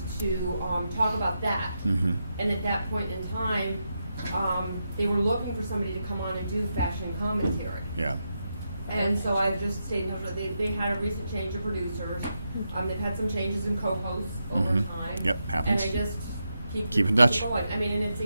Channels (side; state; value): both; inverted; correlation -0.86